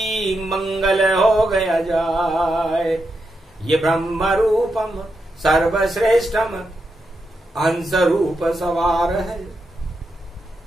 मंगल हो गया जाय। ये ब्रह्म रूपम सर्वश्रेष्ठम हंस रूप सवार है,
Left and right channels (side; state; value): both; normal; correlation 0.85